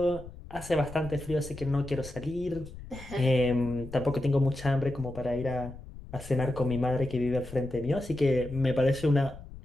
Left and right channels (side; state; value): left; noise; rumble, 15 dB below the sound